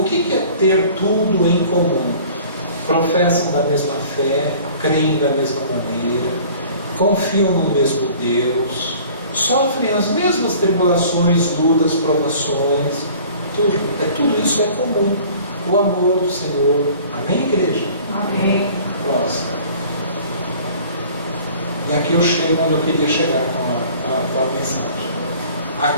que é ter tudo em comum? Professam da mesma fé, creem da mesma maneira, confiam no mesmo Deus, sofrem as mesmas tribulações, lutas, provações, tudo isso é comum. O amor do Senhor. Amém, igreja? Amém. Próximo. E aqui eu chego onde eu queria chegar com a mensagem.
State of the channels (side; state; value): both; inverted; correlation -0.48